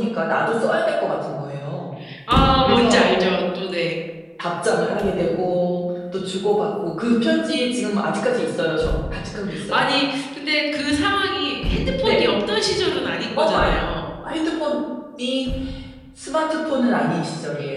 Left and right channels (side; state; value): both; identical; correlation 1.00